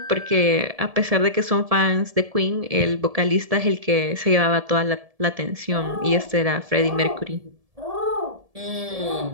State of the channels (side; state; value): left; late; 1.7 ms